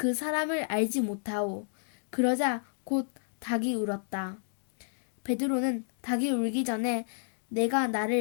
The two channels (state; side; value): silent; right; digital silence